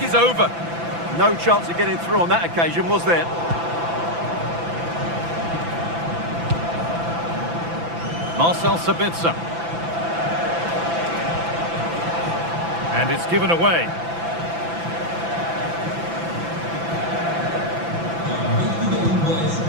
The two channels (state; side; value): late; left; 5.9 ms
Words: is over. No chance of getting through on that occasion, was there? Marcel Sabitzer. And it's given away.